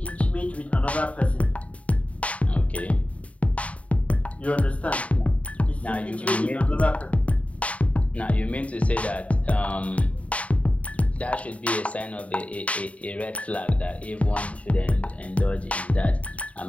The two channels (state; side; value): late; right; 0.066 ms